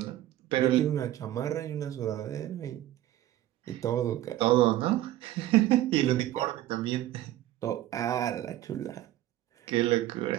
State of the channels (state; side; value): quieter; left; 14.2 dB